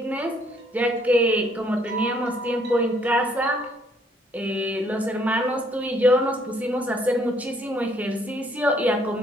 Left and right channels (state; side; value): normal; both; correlation 0.66